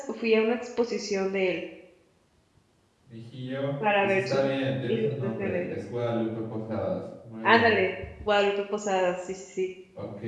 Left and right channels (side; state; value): both; identical; correlation 1.00